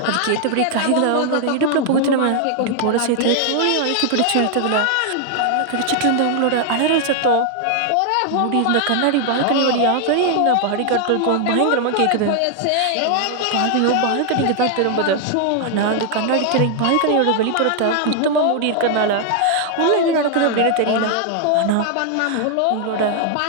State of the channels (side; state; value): both; different; correlation 0.00